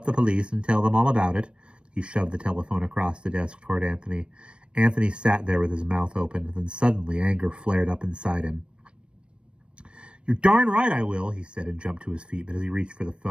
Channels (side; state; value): left; late; 0.058 ms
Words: the police and tell them all about it?" He shoved the telephone across the desk toward Anthony. Anthony sat there with his mouth open, then suddenly anger flared up inside him. "You're darn right I will," he said, and jumped to his feet, but as he reached for the